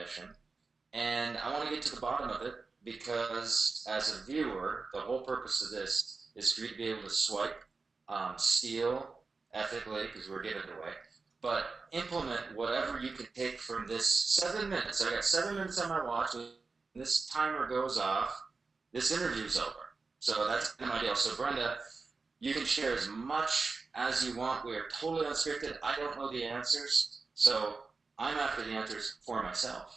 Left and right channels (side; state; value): left; quieter; 4.2 dB